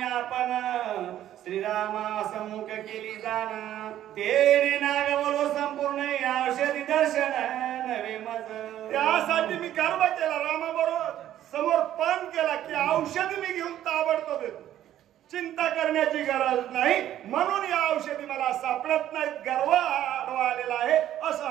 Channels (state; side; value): quieter; left; 12.1 dB